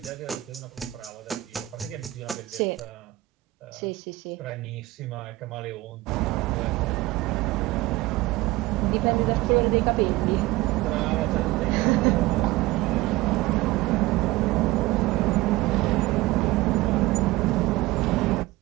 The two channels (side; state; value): left; quieter; 18.9 dB